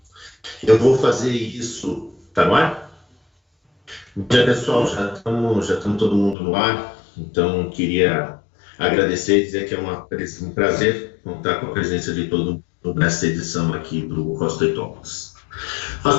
Eu vou fazer isso. Tá no ar? Bom dia, pessoal. Já estamos todo mundo no ar. Então, queria agradecer e dizer que é um prazer contar com a presença de todo mundo nessa edição aqui do Rostoi Talks.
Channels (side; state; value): right; drops out; at 6.4 s